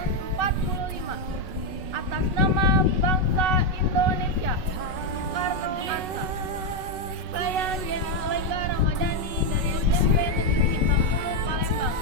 Atas nama bangsa Indonesia.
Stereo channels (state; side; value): late; left; 5.4 ms